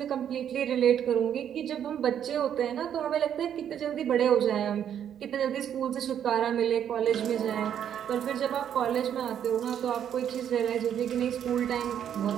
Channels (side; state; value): left; quieter; 9.4 dB